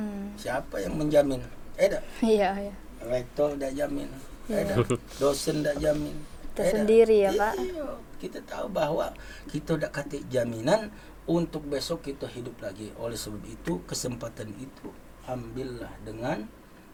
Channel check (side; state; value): both; identical; correlation 1.00